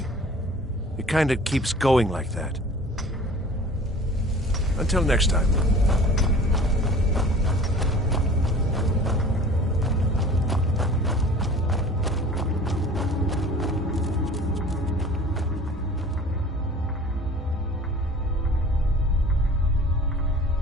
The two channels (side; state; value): both; normal; correlation 0.45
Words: It kind of keeps going like that. Until next time.